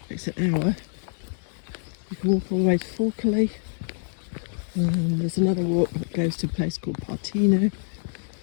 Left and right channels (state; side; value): silent; right; digital silence